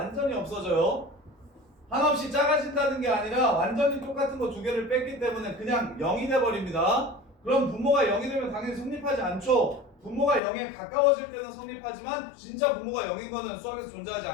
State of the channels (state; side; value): drops out; right; at 10.4 s